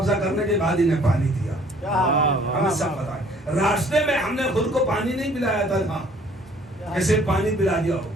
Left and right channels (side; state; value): both; normal; correlation 0.57